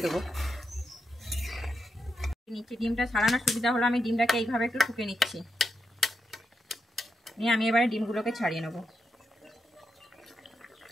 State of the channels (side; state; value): both; normal; correlation 0.85